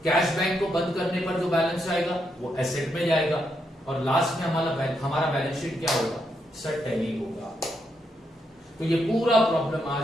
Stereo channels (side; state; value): both; normal; correlation 0.80